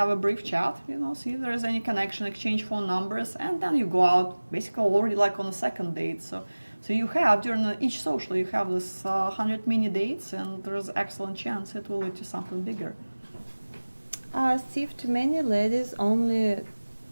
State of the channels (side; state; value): both; inverted; correlation -1.00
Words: a brief chat, see if there is any connection, exchange phone numbers, and then you go out basically already like on a second date. So you have during each social you have this 100 mini dates, and there's excellent chance it will lead to something bigger. Steve, too many ladies only